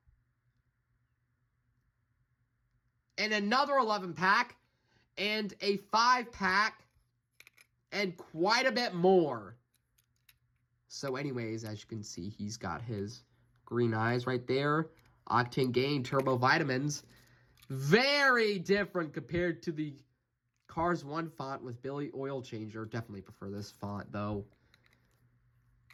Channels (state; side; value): identical; both; correlation 1.00